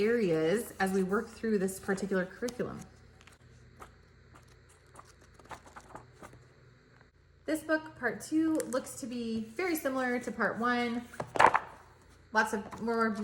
as we work through this particular curriculum. This book, part 2, looks to be very similar to part 1. Lots of more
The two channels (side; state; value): both; identical; correlation 1.00